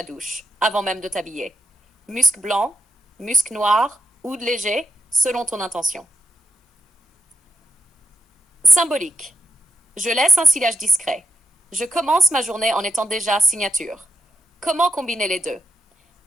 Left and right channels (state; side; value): normal; both; correlation 0.90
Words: douche, avant même de t'habiller. Musc blanc, musc noir, oud léger, selon ton intention. Symbolique. Je laisse un sillage discret. Je commence ma journée en étant déjà signature. Comment combiner les deux?